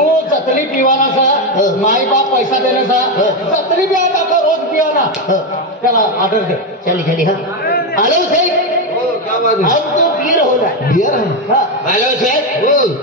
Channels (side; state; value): both; normal; correlation 0.09